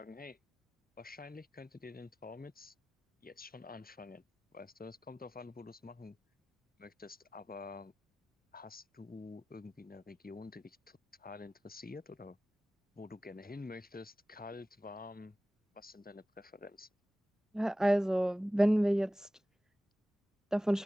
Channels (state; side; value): normal; both; correlation 0.97